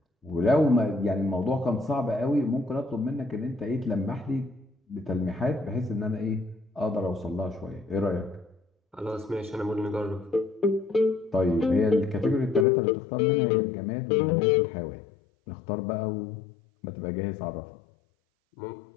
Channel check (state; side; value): drops out; right; at 12.7 s